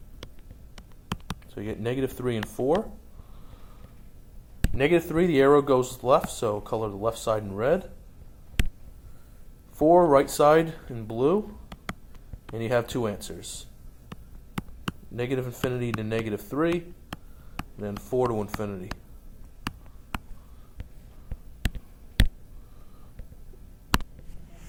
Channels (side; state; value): both; identical; correlation 1.00